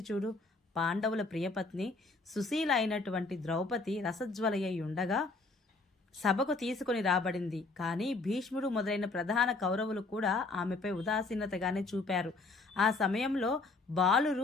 చూడు. పాండవుల ప్రియపత్ని సుశీల అయినటువంటి ద్రౌపది రసజ్వలయ్యి ఉండగా సభకు తీసుకొని రాబడింది. కానీ భీష్ముడు మొదలైన ప్రధాన కౌరవులు కూడా ఆమెపై ఉదాసీనతగానే చూపారు. ఆ సమయంలో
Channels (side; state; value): right; quieter; 3.6 dB